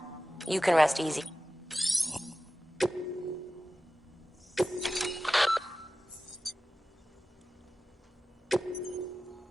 you can rest easy.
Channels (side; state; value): both; normal; correlation 0.95